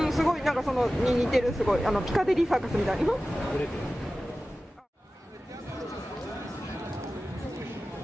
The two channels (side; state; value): both; normal; correlation 0.95